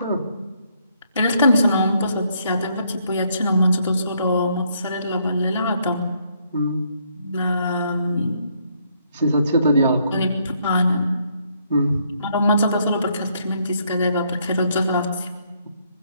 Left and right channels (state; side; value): inverted; both; correlation -0.71